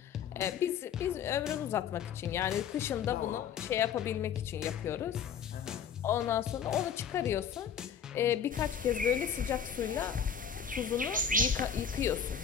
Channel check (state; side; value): quieter; right; 7.6 dB